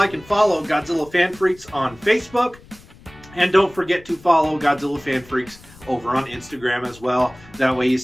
and follow Godzilla Fan Freaks on Facebook. And don't forget to follow Godzilla Fan Freaks over on Instagram as well. That way you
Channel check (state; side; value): noise; left; rumble, 23 dB below the sound